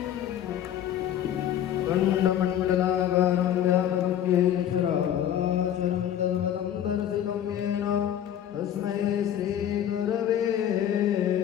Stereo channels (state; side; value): quieter; right; 10.5 dB